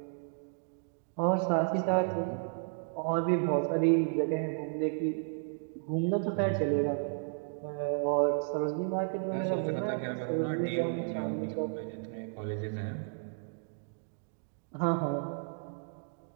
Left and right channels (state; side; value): silent; left; digital silence